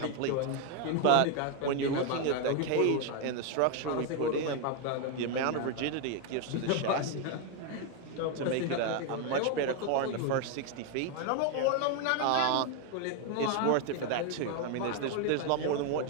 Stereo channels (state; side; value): different; both; correlation 0.01